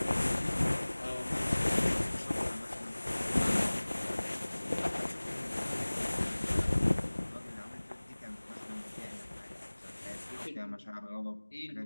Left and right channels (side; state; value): both; inverted; correlation -1.00